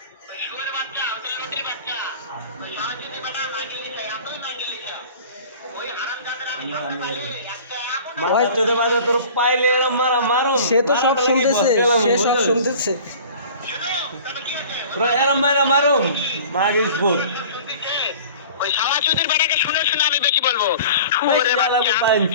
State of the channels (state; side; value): inverted; both; correlation -0.43